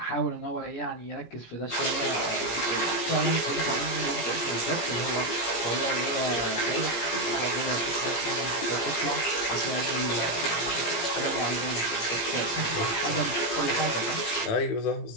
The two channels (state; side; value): late; right; 17 ms